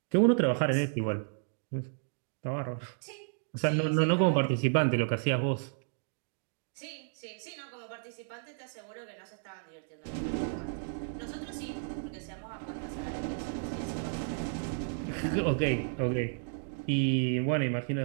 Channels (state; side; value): silent; left; digital silence